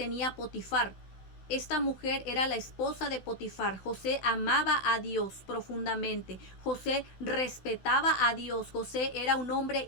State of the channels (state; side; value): late; right; 16 ms